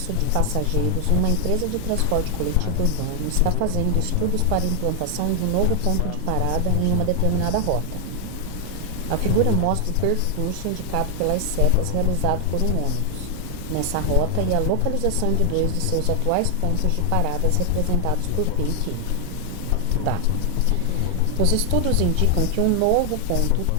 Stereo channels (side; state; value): both; different; correlation 0.00